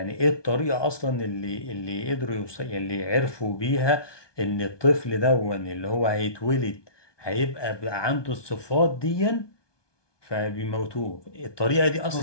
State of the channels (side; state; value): right; late; 1.2 ms